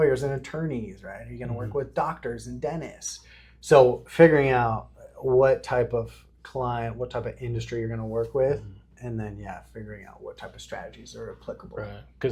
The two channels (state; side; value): identical; both; correlation 1.00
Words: and attorneys, right? Are you going to work with doctors and dentists? So figuring out what type of client, what type of industry you're going to work with, and then figuring out what type of strategies are applicable. Right,